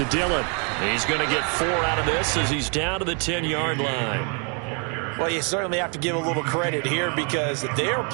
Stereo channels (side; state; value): left; quieter; 37.0 dB